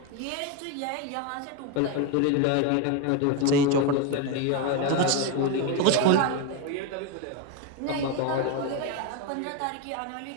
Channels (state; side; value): different; both; correlation 0.02